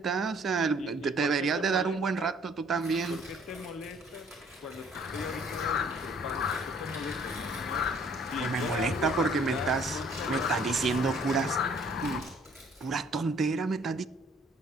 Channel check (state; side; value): normal; both; correlation 0.59